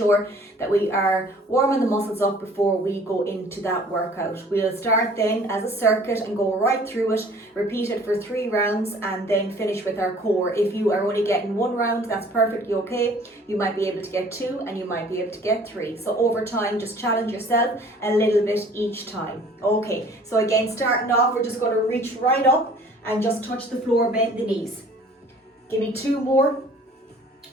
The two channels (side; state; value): both; normal; correlation 0.52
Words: that we are warming the muscles up before we go into that workout. We'll start then as a circuit and go right through it, repeat it for 3 rounds, and then finish with our core. If you are only getting 1 round, that's perfectly okay. You might be able to get 2 and you might be able to get 3. So over time, just challenge yourself a little bit each time. Okay, so again, starting off, we're just going to reach right up and just touch the floor, bend the knees. Give me 2 more.